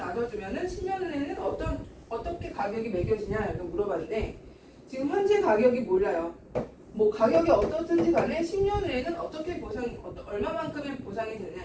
10년 후에는 어떻게 가격이 매겨지냐 이렇게 물어봤는데 지금 현재 가격이 몰라요. 뭐 가격이 어떻든지 간에 10년 후에는 어떻게 얼마만큼의 보상이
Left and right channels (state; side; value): identical; both; correlation 1.00